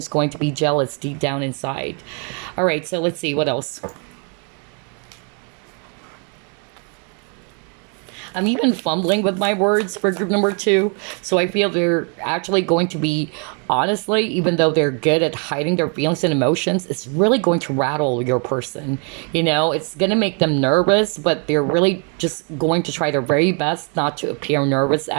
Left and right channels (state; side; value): quieter; left; 38.5 dB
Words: going to be jealous deep down inside. All right, so let's see what else. I'm even fumbling with my words for group number two. So I feel they're actually going to be, honestly, even though they're good at hiding their feelings and emotions, it's really going to rattle your person. It's going to make them nervous, but they're really just going to try their very best not to appear nervous